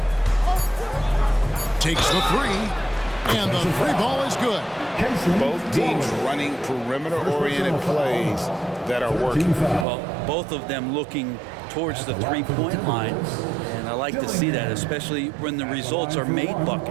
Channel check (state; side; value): drops out; left; at 9.9 s